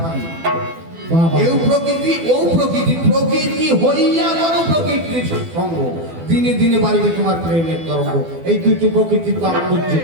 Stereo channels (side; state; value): left; late; 12 ms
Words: কি? বাবা এও প্রকৃতি ও প্রকৃতি। প্রকৃতি হইয়া করো প্রকৃতির সঙ্গ, দিনে দিনে বাড়িবে তোমার প্রেমের তরঙ্গ। এই দুটো প্রকৃতির তাৎপর্য